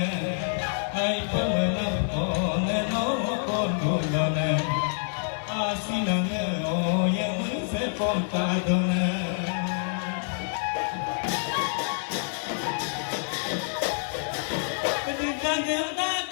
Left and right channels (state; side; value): silent; right; digital silence